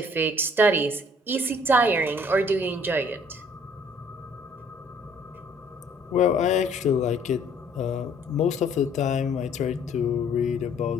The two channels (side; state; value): both; normal; correlation 0.59